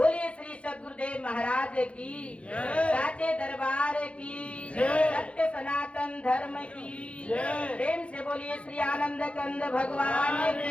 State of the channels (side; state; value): right; late; 0.061 ms